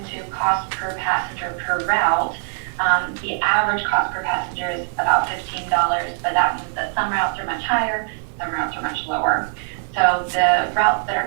cost per passenger per route. The average cost per passenger is about $15, but that means that some routes are much higher, some routes are much lower. So the routes that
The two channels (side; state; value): left; silent; digital silence